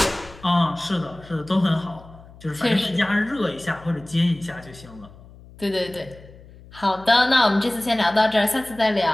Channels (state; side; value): noise; left; hum, 21 dB below the sound